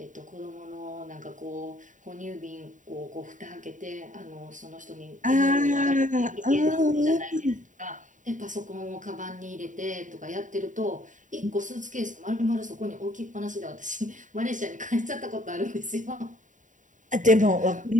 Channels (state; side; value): late; left; 0.37 ms